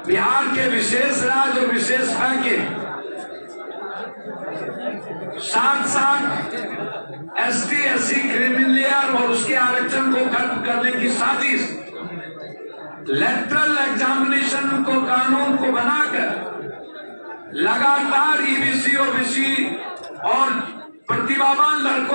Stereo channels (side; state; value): both; inverted; correlation -1.00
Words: बिहार के विशेष राज्य और विशेष पैकेज, साथ एसटी एससी क्रिमिनल लेयर और उसके आरक्षण को खत्म करने की साजिश, लेटरल एग्जामिनेशन को कानून को बनाकर लगातार ईबीसी ओबीसी और प्रतिभावान